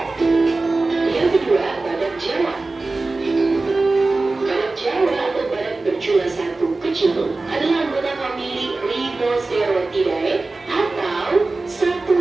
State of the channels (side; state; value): left; quieter; 3.4 dB